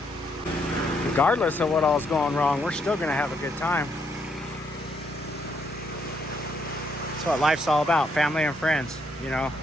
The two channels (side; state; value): both; normal; correlation 0.74